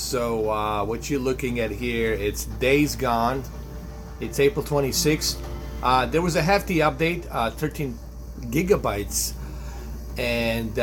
what you're looking at here, it's Days Gone. It's April 26th. There was a hefty update, 13 gigabytes, and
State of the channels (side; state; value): both; identical; correlation 1.00